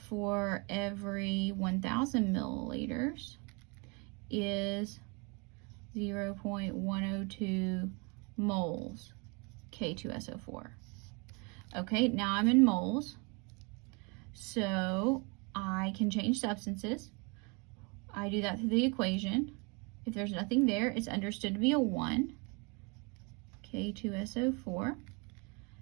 every 1,000 milliliters is 0.102 moles K2SO4. Okay, now I'm in moles, so I can change substances. I do that through the equation. If there's nothing there, it's understood to be a 1, K2SO4,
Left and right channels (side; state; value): left; quieter; 31.5 dB